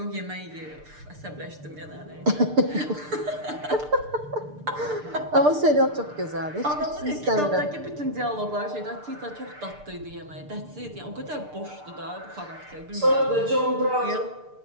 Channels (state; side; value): late; left; 6.7 ms